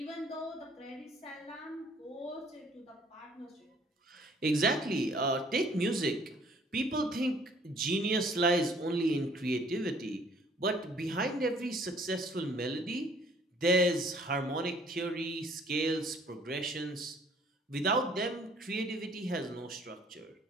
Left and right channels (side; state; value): both; normal; correlation 0.58